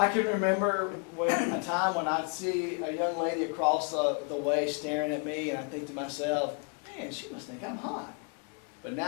can remember a time when I'd see a young lady across the way staring at me, and I think to myself, man, she must think I'm hot. But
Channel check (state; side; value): quieter; right; 36.8 dB